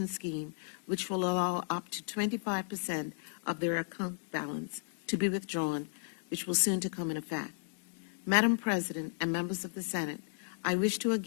Scheme, which will allow up to 25% of their account balance to be withdrawn, which will soon to come in effect. Madam President and members of the Senate, I wish to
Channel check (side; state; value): right; silent; 55 dB below the other